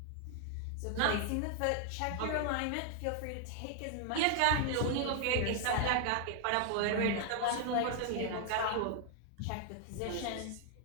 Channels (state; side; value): different; both; correlation 0.00